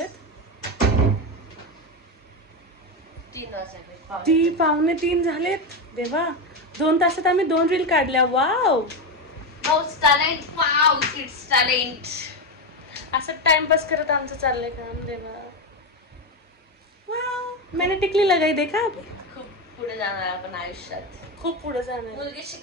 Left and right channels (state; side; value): normal; both; correlation 0.13